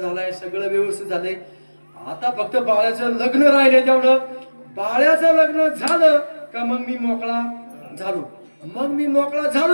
सगळं व्यवस्थित झालंय, आता फक्त बाळ्याचं लग्न राहिले. तेवढं बाळ्याचं लग्न झालं का मग मी मोकळा झालो. मग मी मोकळा झालो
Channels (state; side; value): inverted; both; correlation -1.00